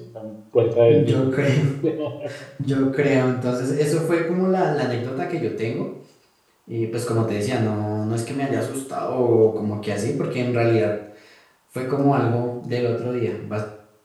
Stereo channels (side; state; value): both; identical; correlation 1.00